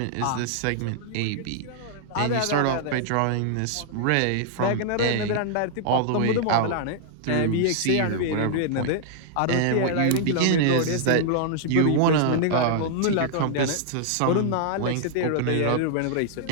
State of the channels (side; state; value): both; different; correlation -0.01